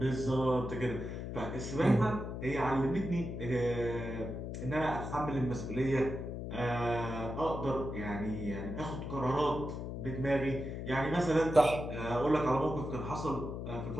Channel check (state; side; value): noise; left; hum, 6 dB below the sound